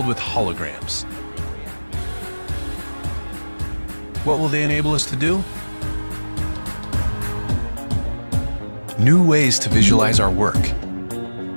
with holograms. What will they enable us to do? New ways to visualize our work.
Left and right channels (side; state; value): both; inverted; correlation -1.00